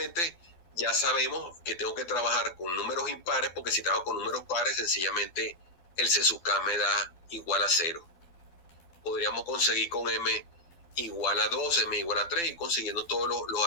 Ya sabemos que tengo que trabajar con números impares, porque si trabajo con números pares, sencillamente el C sub K me da igual a 0. Podríamos conseguir con M igual a 2, M igual a 3 y consiguiendo todos los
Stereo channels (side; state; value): right; late; 12 ms